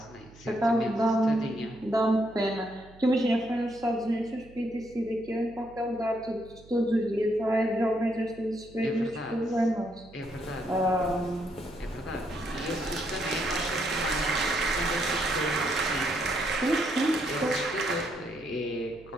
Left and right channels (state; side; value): noise; right; hum, 22 dB below the sound